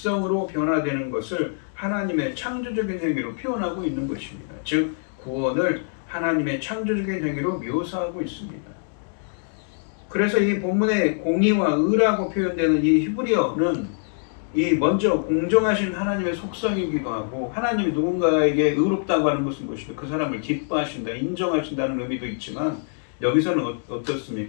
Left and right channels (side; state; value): right; silent; digital silence